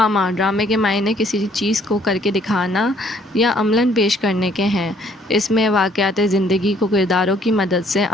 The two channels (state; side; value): normal; both; correlation 0.63